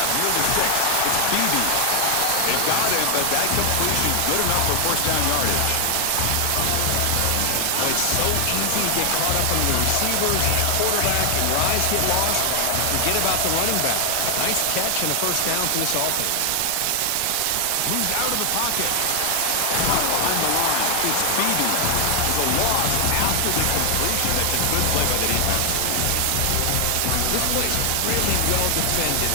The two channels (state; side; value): different; both; correlation 0.00